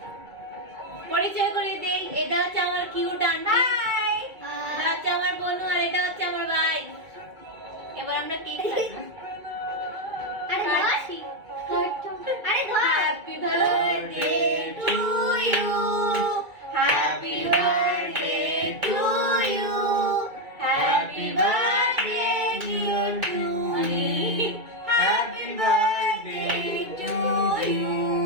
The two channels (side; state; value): left; late; 2.3 ms